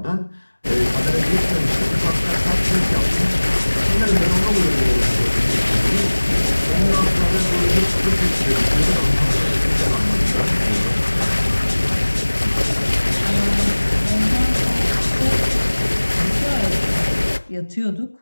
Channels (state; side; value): inverted; both; correlation -1.00